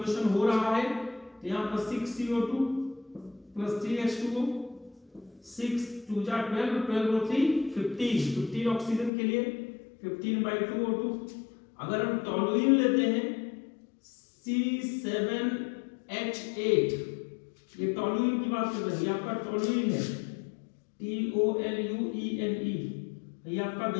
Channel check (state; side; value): drops out; right; at 9.1 s